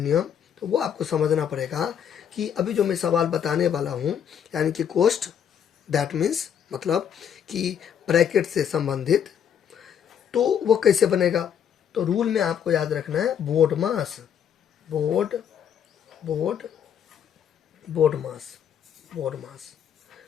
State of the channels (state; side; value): quieter; right; 8.6 dB